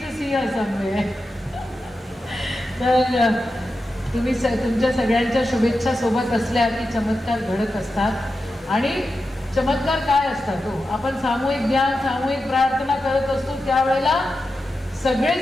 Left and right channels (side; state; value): both; normal; correlation 0.90